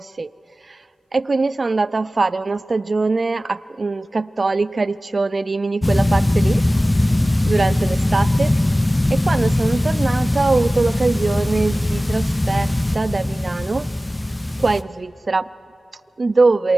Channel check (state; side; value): normal; both; correlation 0.97